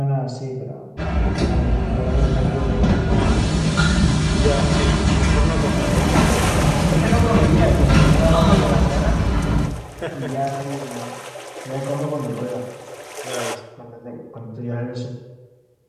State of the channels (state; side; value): identical; both; correlation 1.00